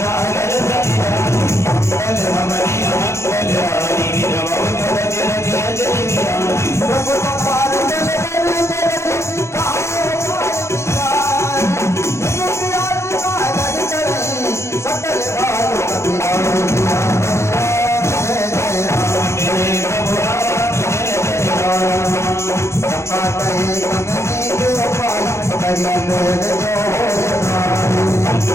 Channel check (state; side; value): late; right; 0.13 ms